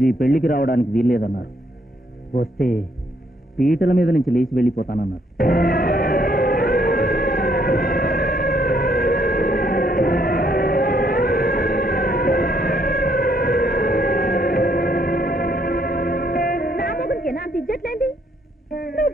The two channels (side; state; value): both; normal; correlation 0.70